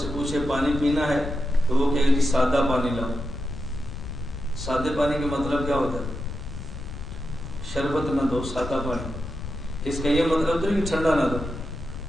پوچھے پانی پینا ہے تو وہ کہے گی سادہ پانی لاؤ۔ سادے پانی کا مطلب کیا ہوتا ہے؟ شربت نہ دو، سادہ پانی۔ اس کا یہ مطلب تو نہیں کہ ٹھنڈا نہ دو،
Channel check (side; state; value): left; noise; rumble, 9 dB below the sound